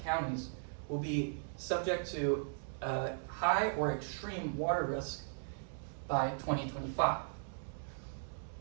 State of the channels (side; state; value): left; silent; digital silence